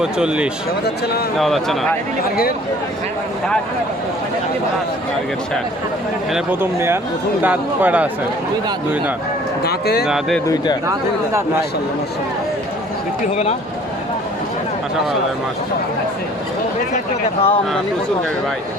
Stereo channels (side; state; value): both; normal; correlation 0.52